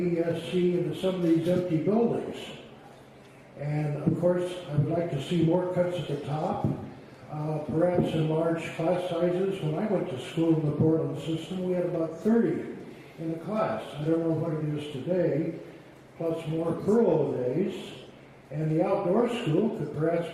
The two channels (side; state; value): both; identical; correlation 1.00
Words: into some of these empty buildings. And of course, I would like to see more cuts at the top, perhaps in large class sizes. When I went to school in the Portland system, we had about 30 in a class. I don't know what it is today, plus more furlough days. And the outdoor school could perhaps